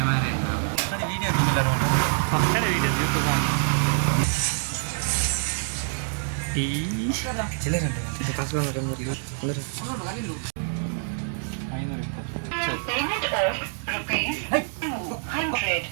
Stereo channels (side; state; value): left; silent; digital silence